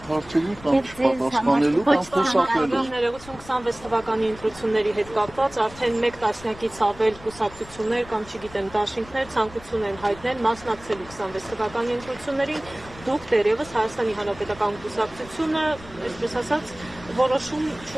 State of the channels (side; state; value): left; noise; rumble, 19 dB below the sound